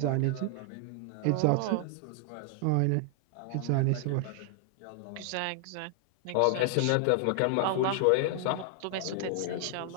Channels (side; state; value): both; different; correlation 0.00